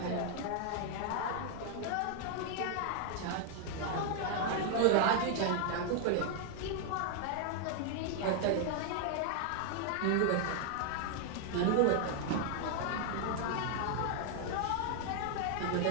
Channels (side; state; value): both; different; correlation 0.00